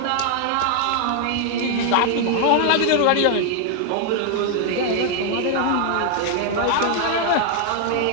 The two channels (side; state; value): both; different; correlation 0.00